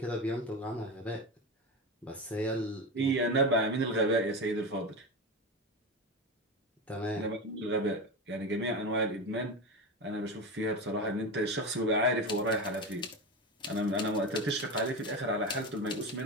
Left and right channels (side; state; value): both; normal; correlation 0.21